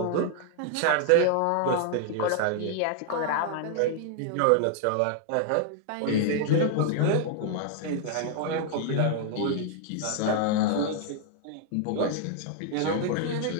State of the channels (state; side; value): different; both; correlation 0.00